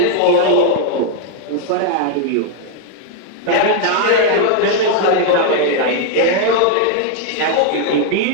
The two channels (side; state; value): both; different; correlation 0.00